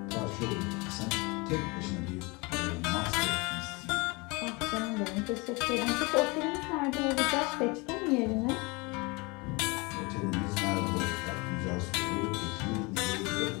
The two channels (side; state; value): right; quieter; 26.9 dB